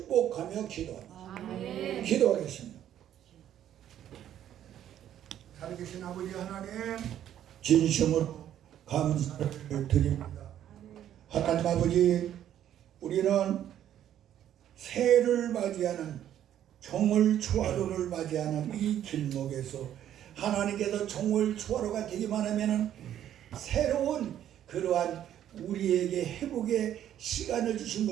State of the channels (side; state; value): left; quieter; 11.0 dB